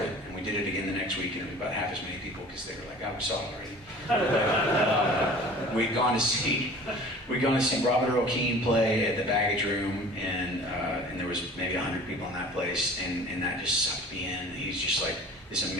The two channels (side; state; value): both; normal; correlation 0.44